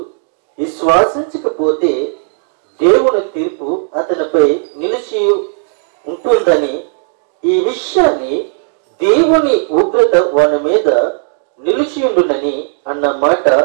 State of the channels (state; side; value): silent; left; digital silence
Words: విశ్వాసించకపోతే దేవుని తీర్పు అతనిపై నిలిచి ఉంటుందని, ఈ విషయాన్ని దేవుని ఉగ్రత వాని మీద నిలిచియుండునని అన్న మాట